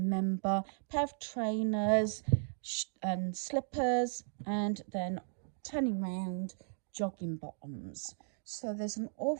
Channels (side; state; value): left; silent; digital silence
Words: Pair of trainers and slippers, and then turning round, jogging bottoms. So there's an